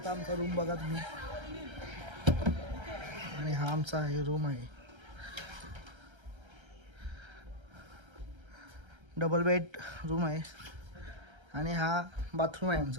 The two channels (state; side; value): late; left; 1.3 ms